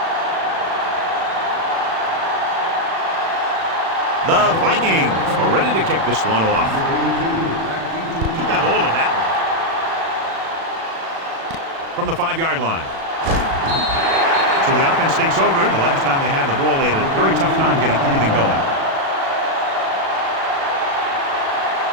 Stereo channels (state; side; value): late; left; 36 ms